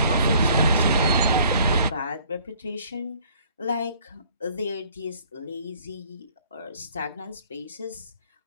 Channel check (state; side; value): inverted; both; correlation -0.57